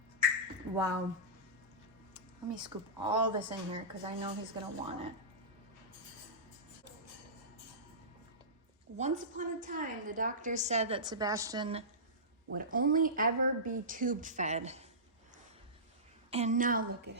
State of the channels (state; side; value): normal; both; correlation -0.19